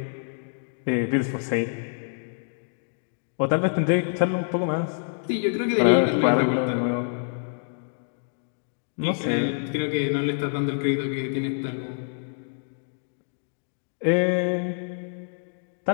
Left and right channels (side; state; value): right; silent; digital silence